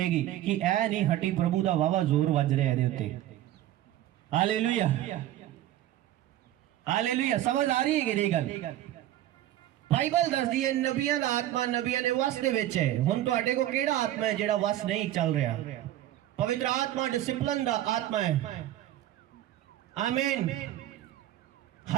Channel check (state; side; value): quieter; left; 13.4 dB